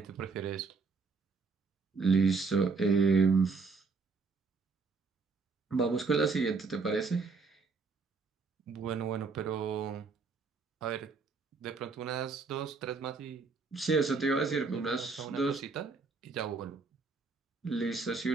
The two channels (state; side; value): quieter; left; 4.5 dB